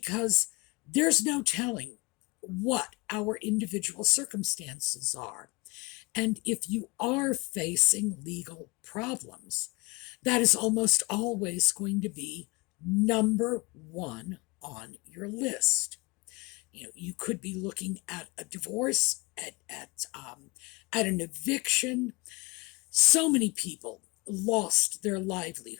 there's no telling what our individual circumstances are. And if you are facing legal problems, that is almost always going to be number one on your list. You could be looking at a divorce, at an eviction. So many people lost their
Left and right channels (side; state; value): right; quieter; 26.3 dB